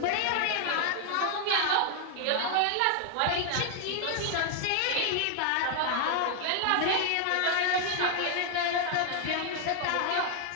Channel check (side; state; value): both; different; correlation 0.00